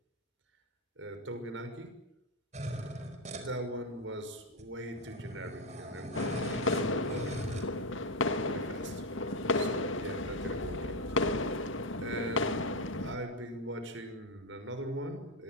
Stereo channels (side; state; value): both; normal; correlation 0.05